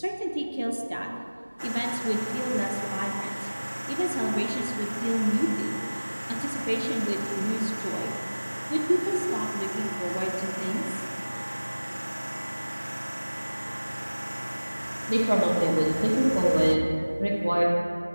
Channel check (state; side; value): inverted; both; correlation -1.00